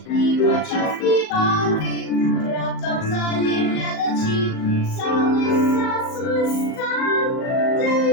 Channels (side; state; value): right; late; 38 ms